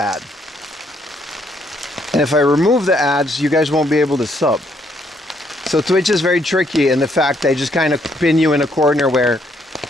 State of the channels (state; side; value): normal; both; correlation 0.71